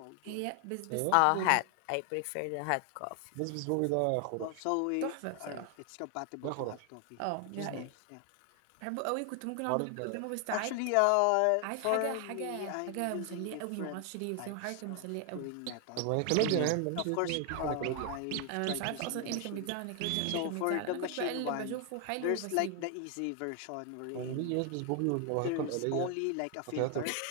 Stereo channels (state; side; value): different; both; correlation 0.00